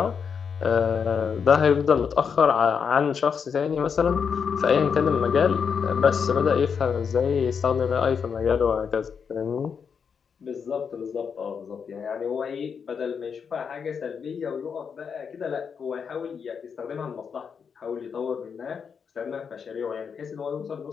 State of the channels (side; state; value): right; quieter; 6.5 dB